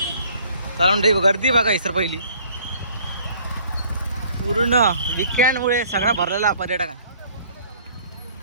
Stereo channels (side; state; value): both; inverted; correlation -0.55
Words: कारण गर्दी बघा सर पहिली पूर्ण विकेंडमुळे सगळा भरलेला पर्यटकांना.